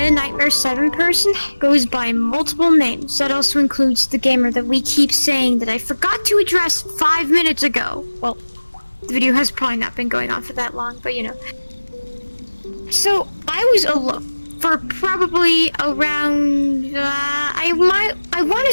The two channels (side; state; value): both; inverted; correlation -1.00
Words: 7 person goes by multiple names. That also includes the gamer that we keep saying that I forgot to address 5 minutes ago. Well, the video has probably not been going on for that long, but you know. So, I was alone for probably around, I want to